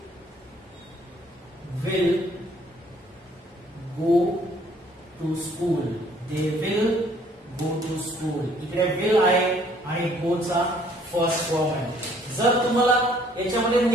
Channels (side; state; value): both; normal; correlation 0.61